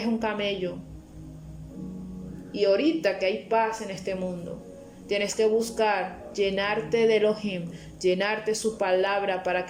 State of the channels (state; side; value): identical; both; correlation 1.00